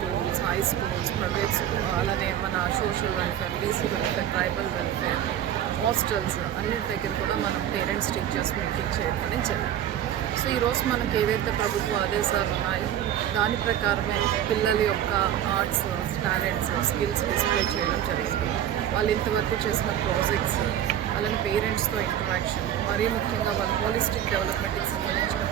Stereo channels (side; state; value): left; quieter; 10.7 dB